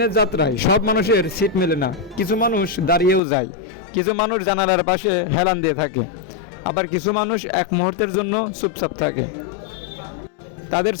যাত্রায় সব মানুষের সিট মেলে না। কিছু মানুষ দাঁড়িয়েও যায়, কিছু মানুষ জানালার পাশে হেলান দিয়ে থাকে, আবার কিছু মানুষ এক মুহূর্তের জন্য চুপচাপ থাকে। তাদের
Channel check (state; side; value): drops out; right; at 3.2 s